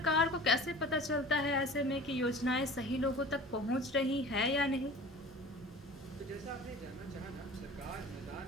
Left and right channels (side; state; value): both; normal; correlation 0.41